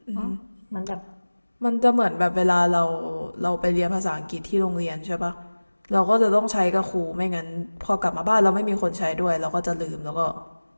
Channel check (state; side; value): inverted; both; correlation -1.00